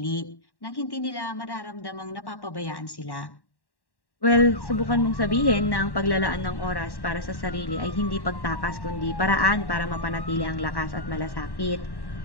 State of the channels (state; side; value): late; right; 1.1 ms